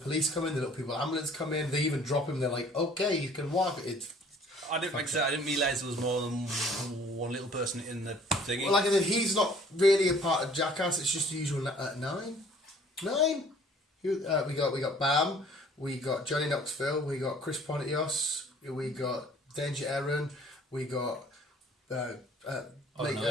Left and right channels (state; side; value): normal; both; correlation 0.55